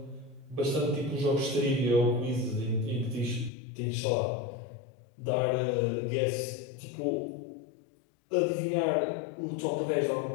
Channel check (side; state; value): right; drops out; at 3.5 s